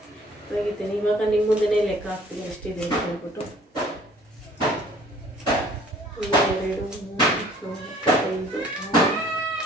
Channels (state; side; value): normal; both; correlation 0.54